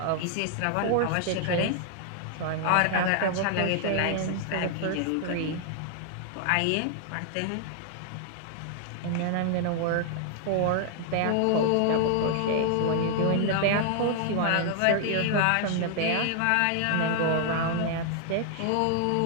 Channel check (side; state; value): both; different; correlation 0.00